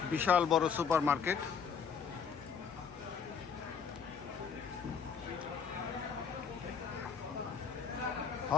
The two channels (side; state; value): right; quieter; 6.6 dB